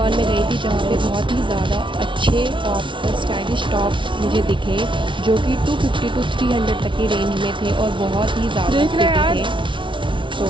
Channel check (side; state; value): left; late; 0.24 ms